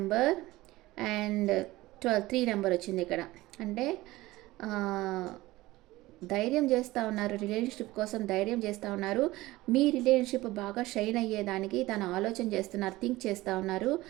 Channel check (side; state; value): left; quieter; 18.5 dB